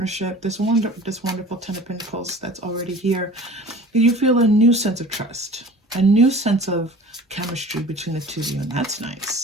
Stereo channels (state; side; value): normal; both; correlation 0.43